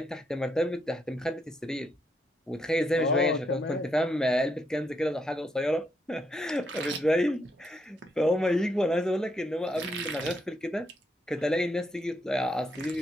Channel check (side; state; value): both; normal; correlation 0.78